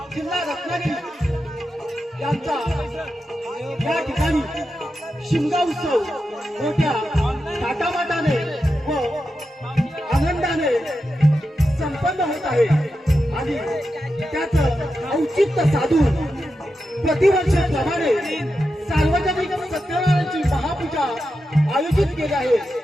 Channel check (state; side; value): normal; both; correlation 0.89